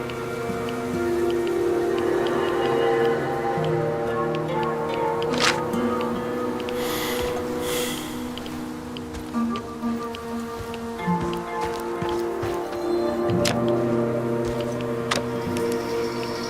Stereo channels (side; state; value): both; identical; correlation 1.00